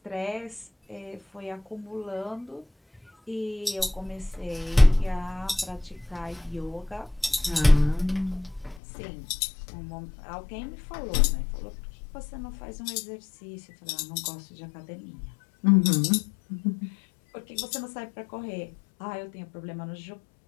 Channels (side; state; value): right; drops out; at 8.8 s